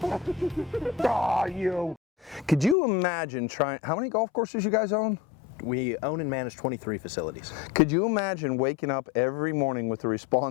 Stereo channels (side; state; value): right; drops out; at 2.8 s